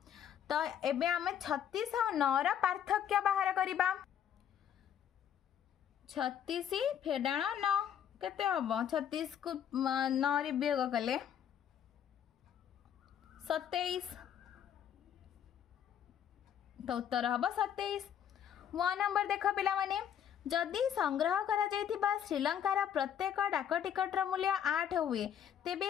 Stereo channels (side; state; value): right; quieter; 9.4 dB